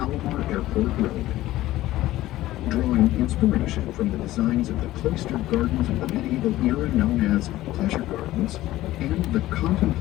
Airport Road. Drawing inspiration from the designs of the cloistered gardens of the medieval era known as pleasure gardens and the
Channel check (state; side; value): quieter; right; 15.8 dB